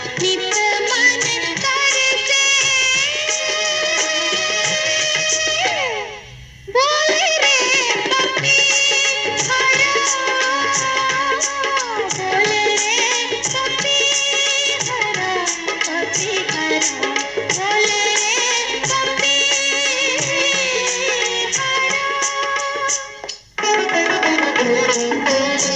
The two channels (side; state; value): both; identical; correlation 1.00